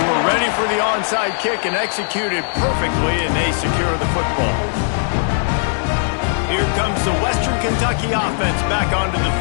were ready for the onside kick and executed perfectly, and they secure the football. Here comes the Western Kentucky offense back onto the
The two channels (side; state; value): right; silent; digital silence